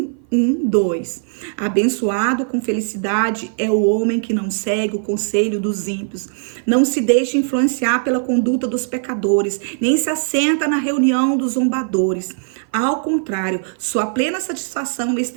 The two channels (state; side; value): silent; left; 55 dB below the other